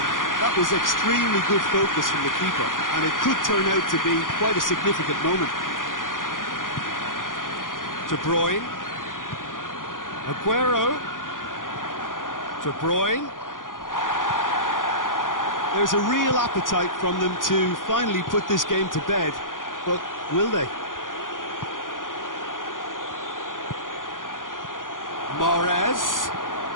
That was extremely good focus from the keeper, and it could turn out to be quite a significant moment. De Bruyne. Aguero. De Bruyne. There's a real appetite from them to finally put this game to bed, but will they? Mahrez.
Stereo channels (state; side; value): late; right; 0.89 ms